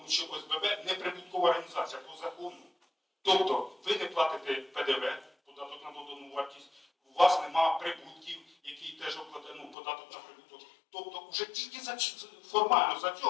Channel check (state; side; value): drops out; right; at 9.8 s